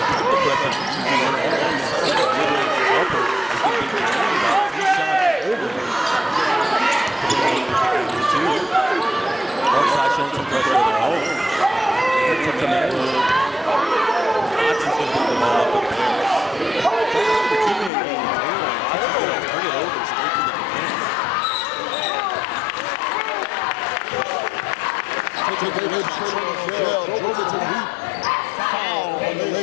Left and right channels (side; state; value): right; drops out; at 17.9 s